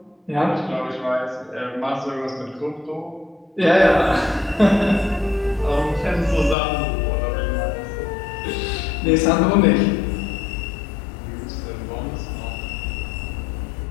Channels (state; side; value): drops out; right; at 6.6 s